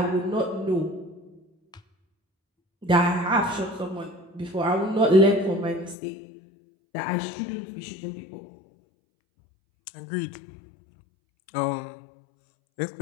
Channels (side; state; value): right; drops out; at 6.0 s